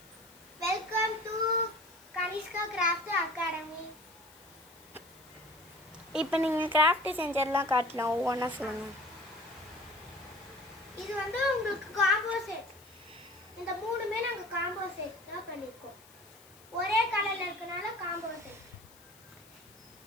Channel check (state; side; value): noise; left; hiss, 24 dB below the sound